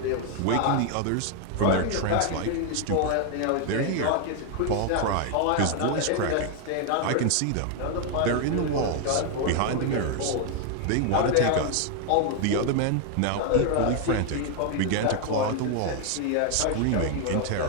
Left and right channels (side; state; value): both; different; correlation 0.00